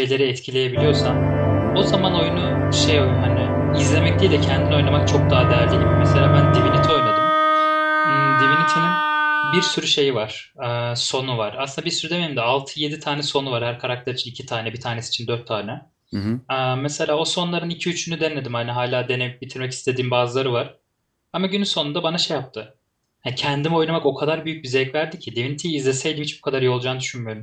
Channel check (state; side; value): identical; both; correlation 1.00